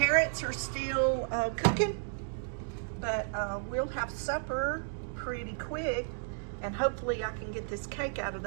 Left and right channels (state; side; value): silent; left; digital silence